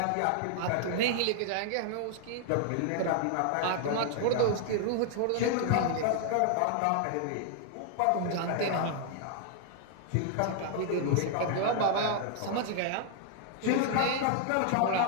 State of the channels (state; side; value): different; both; correlation 0.00